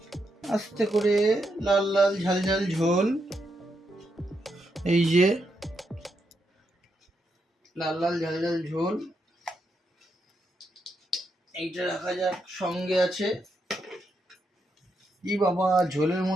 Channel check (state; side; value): normal; both; correlation 0.81